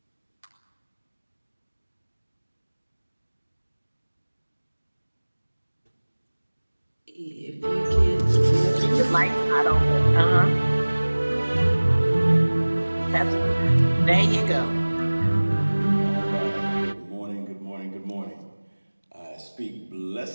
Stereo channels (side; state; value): both; inverted; correlation -1.00